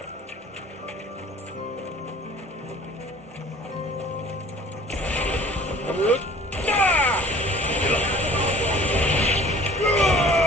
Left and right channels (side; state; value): both; normal; correlation 0.49